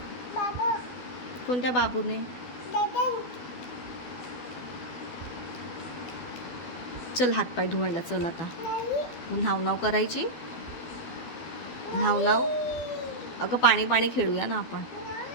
कोणत्या बाबूने? चल हातपाय धुवायला चल आता. मग न्हाव करायची. न्हाव. अगं पाणी पाणी खेळूया ना आपण.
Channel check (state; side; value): late; right; 12 ms